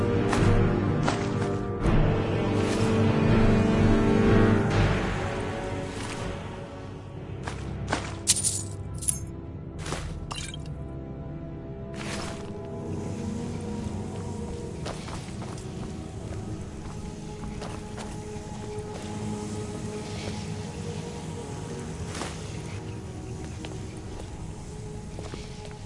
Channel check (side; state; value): both; identical; correlation 1.00